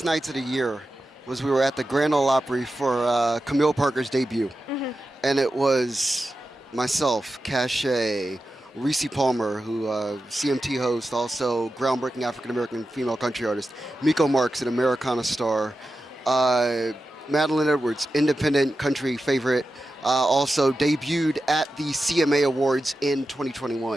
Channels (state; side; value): normal; both; correlation 0.92